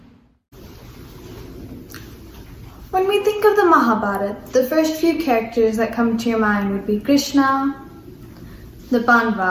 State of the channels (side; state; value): both; identical; correlation 1.00